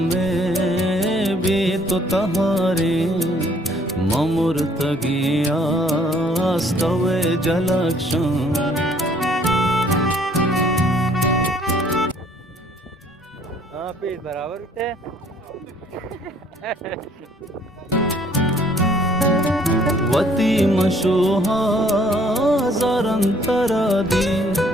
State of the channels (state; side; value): normal; both; correlation 0.61